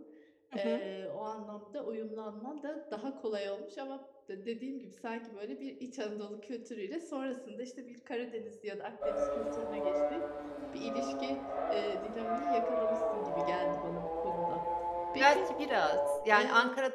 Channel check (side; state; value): both; identical; correlation 1.00